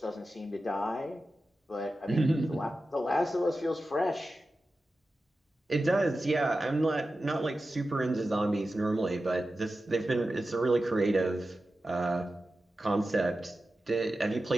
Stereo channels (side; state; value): both; normal; correlation 0.93